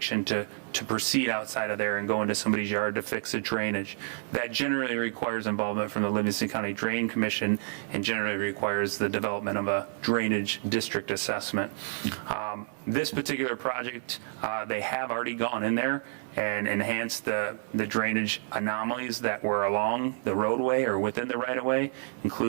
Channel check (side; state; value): left; silent; 58 dB below the other